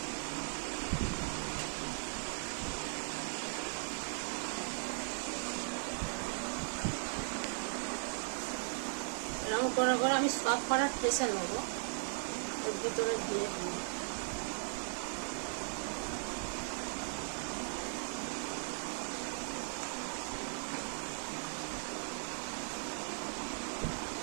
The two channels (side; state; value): left; silent; digital silence